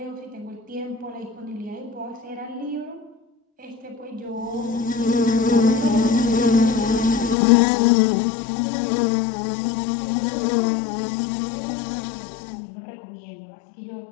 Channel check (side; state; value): right; drops out; at 7.4 s